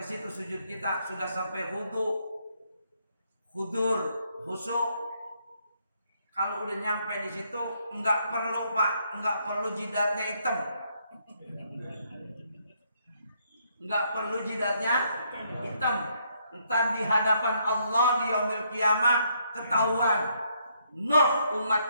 situ sujud kita sudah sampai hudu, hudur, khusyuk. Kalau udah nyampe di situ enggak perlu Pak, enggak perlu jidatnya hitam. Enggak perlu jidatnya hitam. Entar di hadapan Allah di yaumil kiamah ketahuan. Noh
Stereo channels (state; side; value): inverted; both; correlation -0.72